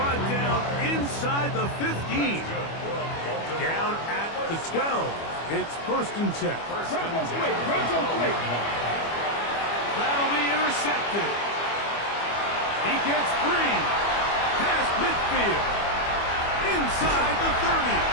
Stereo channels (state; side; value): late; right; 25 ms